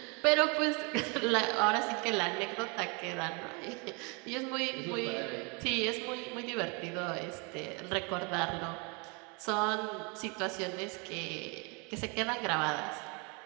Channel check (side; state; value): left; quieter; 31.7 dB